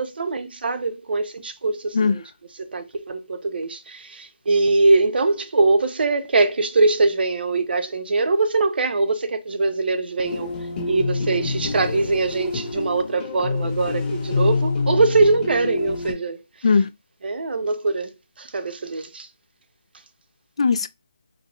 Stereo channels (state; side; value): inverted; both; correlation -0.81